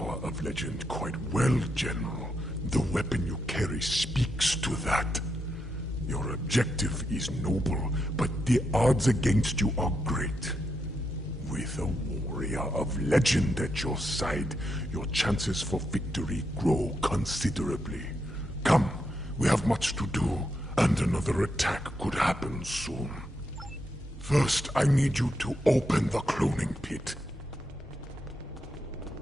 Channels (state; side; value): normal; both; correlation 0.82